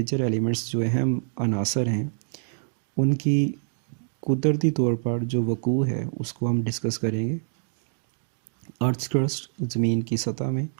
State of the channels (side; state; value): left; silent; digital silence